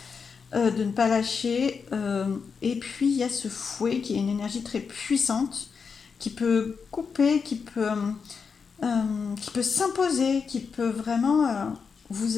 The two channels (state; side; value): quieter; right; 5.7 dB